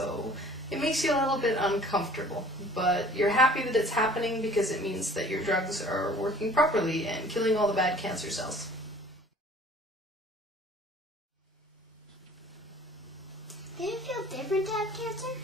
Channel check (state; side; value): normal; both; correlation 0.50